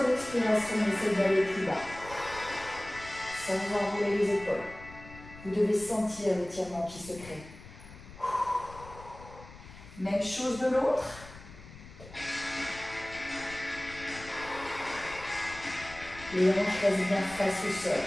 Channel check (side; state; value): left; noise; rumble, 17 dB below the sound